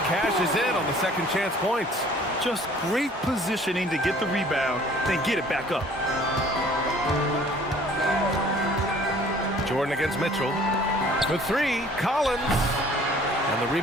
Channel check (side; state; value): both; normal; correlation 0.53